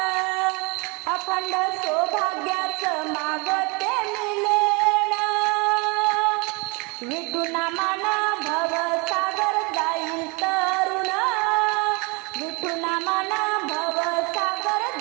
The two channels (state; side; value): quieter; left; 29.6 dB